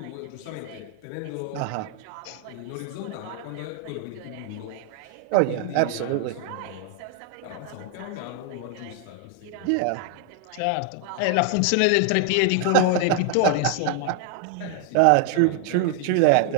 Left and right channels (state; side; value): different; both; correlation 0.00